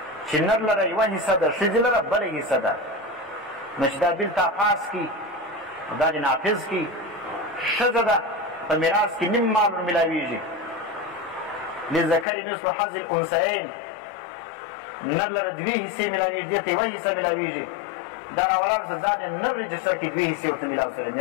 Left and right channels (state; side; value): drops out; right; at 12.2 s